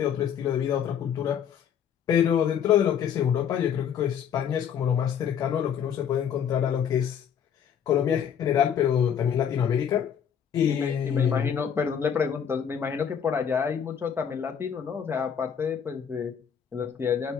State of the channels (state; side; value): quieter; right; 8.2 dB